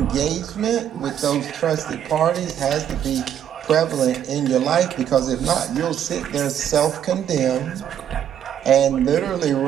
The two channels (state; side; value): quieter; left; 9.8 dB